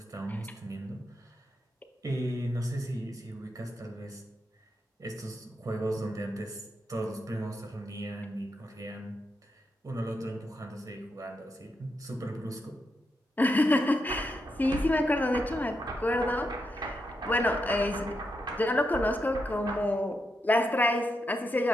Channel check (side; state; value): both; normal; correlation 0.83